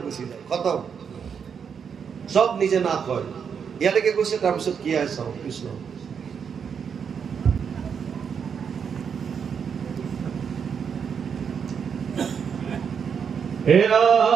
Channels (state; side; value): quieter; left; 6.9 dB